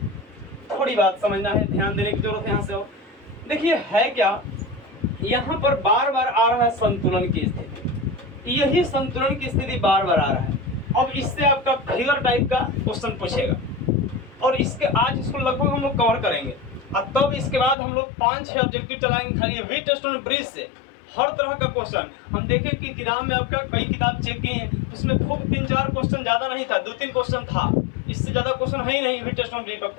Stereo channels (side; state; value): right; drops out; at 17.8 s